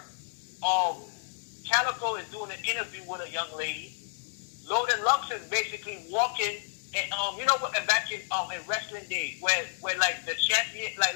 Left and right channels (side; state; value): right; silent; digital silence